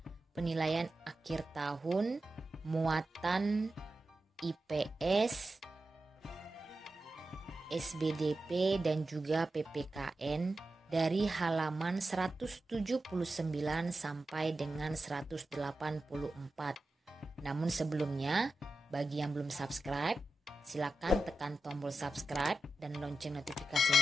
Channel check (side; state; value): both; normal; correlation 0.91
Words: penilaian akhir tahun, muatan IPS, SBDP dan juga PPKN dari halaman 179 sampai dengan 184. Namun sebelumnya, bagi yang belum subscribe, silakan tekan tombol subscribe dan lonceng